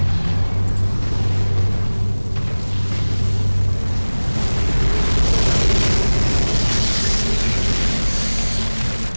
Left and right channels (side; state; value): both; inverted; correlation -1.00